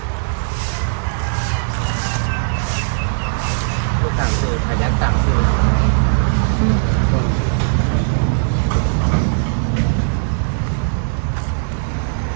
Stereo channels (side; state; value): left; silent; digital silence